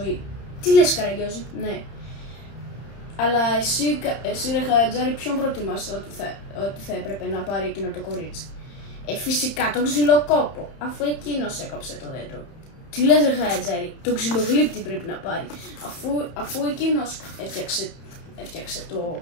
Τι λες, Καραγκιόζη? Ναι. Αλλά εσύ ρε Χατζάρη, ποιον προτιμάς ότι θα έπρεπε να πάρει εκείνο το κορίτσι? Φυσικά τον ξυλοκόπο, αφού εκείνος έκοψε το δέντρο. Τι λες, ρε Χατζάρη? Τον ξυλογλύπτη πρέπει να πάρει, αφού εκείνος έφτιαξε το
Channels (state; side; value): late; right; 31 ms